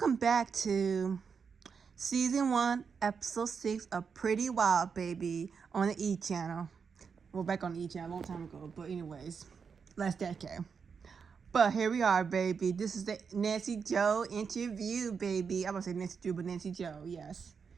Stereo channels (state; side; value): quieter; left; 6.0 dB